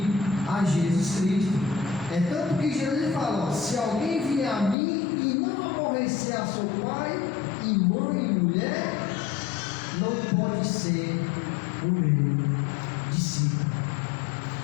a Jesus Cristo. É tanto que Jesus fala: ó, se alguém vier a mim e não aborrecer a seu pai e mãe e mulher, não pode ser o meu discípulo.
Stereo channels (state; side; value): drops out; right; at 4.8 s